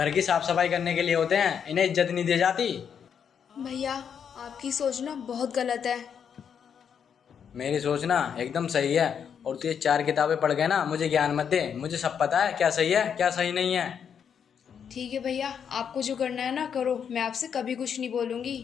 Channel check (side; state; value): right; quieter; 7.6 dB